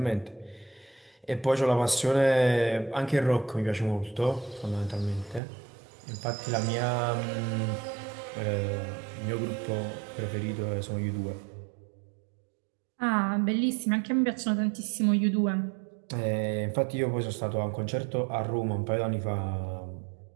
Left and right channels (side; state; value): left; drops out; at 5.4 s